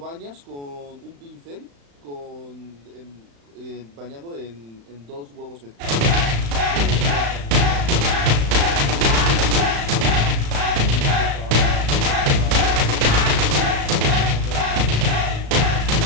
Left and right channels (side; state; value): left; late; 35 ms